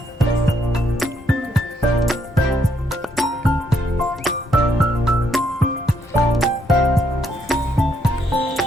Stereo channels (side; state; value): both; normal; correlation 0.73